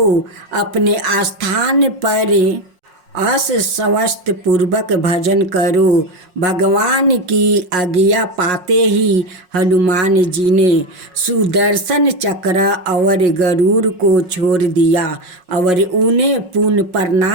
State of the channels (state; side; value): late; left; 5.5 ms